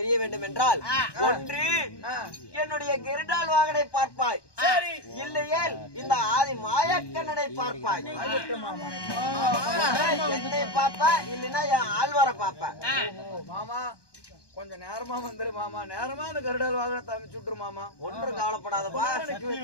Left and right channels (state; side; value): late; right; 1.2 ms